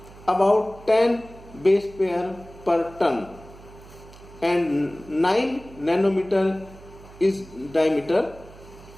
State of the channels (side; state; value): right; noise; hum, 20 dB below the sound